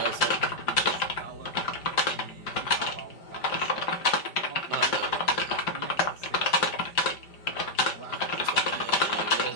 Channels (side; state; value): right; late; 5.0 ms